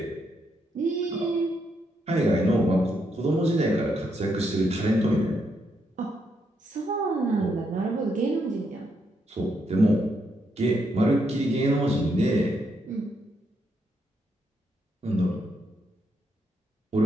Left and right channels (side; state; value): both; normal; correlation 0.78